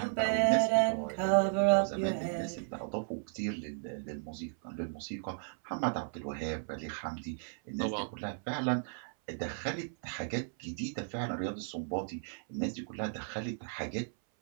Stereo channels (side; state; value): left; silent; 55 dB below the other